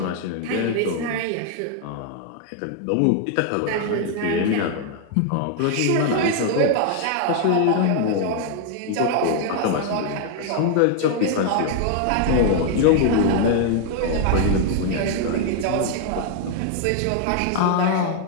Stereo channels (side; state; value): both; different; correlation 0.00